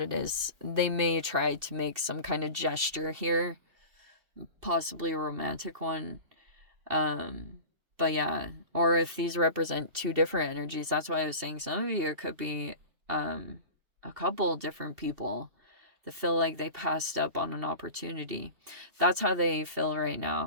it is. They may try to make some kind of gesture here, possibly a romantic one. But yeah, or if these represent two different energies, that's why I was saying some of you, it could be a couple different people that feel like they passed up on an opportunity. That's how they feel right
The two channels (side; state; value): left; late; 2.7 ms